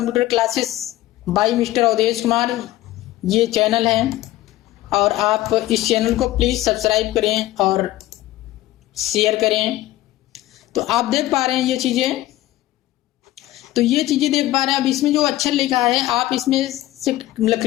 classes by mister Awadhesh Kumar, ये चैनल है। और आप इस चैनल को प्लीज़ सब्सक्राइब करें और शेयर करें। तो आप देख पा रहे हैं ये चीज़ें, तो ये चीज़ें देख पा रहे हैं। अब इसमें जो अक्षर लिखा है आप इसमें से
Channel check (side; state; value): right; quieter; 15.9 dB